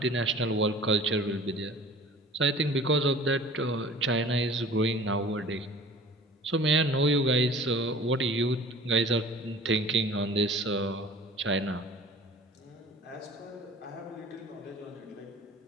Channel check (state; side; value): normal; both; correlation 0.45